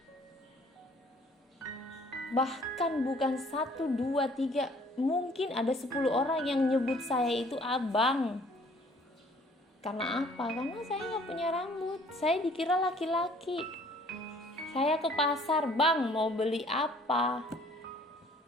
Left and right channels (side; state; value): both; normal; correlation 0.57